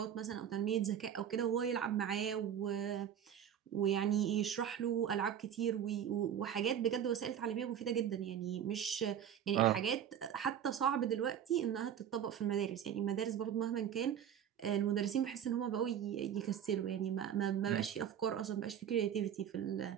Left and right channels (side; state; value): left; quieter; 9.3 dB